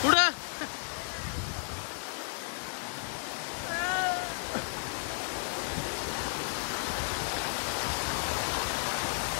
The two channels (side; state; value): right; silent; digital silence